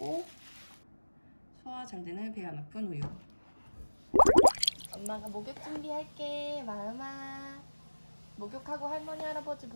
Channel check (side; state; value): both; inverted; correlation -1.00